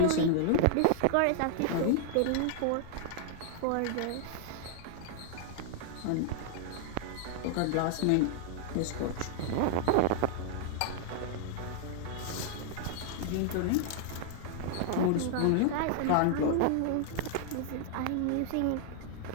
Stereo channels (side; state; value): both; different; correlation -0.01